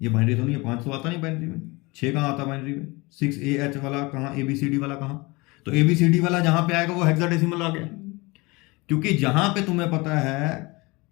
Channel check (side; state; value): right; quieter; 24.6 dB